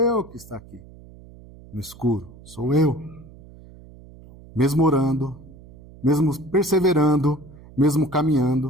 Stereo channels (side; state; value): right; noise; hum, 21 dB below the sound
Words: que está aqui, no escuro. Sou eu. Mesmo orando, mesmo perseverando, mesmo